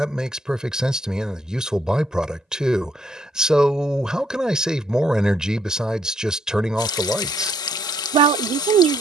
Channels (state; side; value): normal; both; correlation 0.71